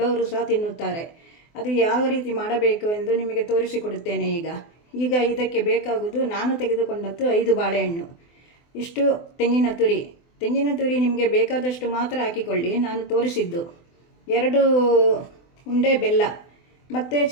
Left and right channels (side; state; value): right; late; 24 ms